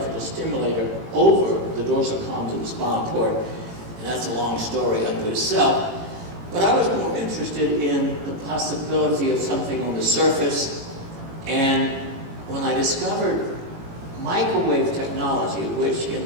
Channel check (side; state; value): left; late; 18 ms